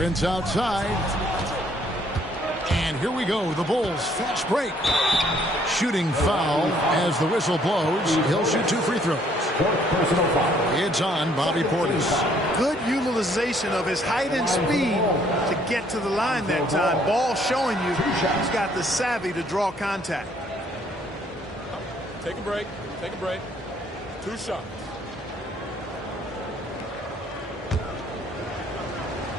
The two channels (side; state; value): both; normal; correlation 0.64